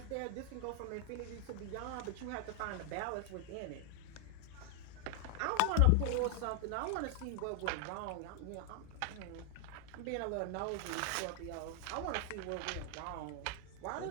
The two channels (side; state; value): both; different; correlation 0.00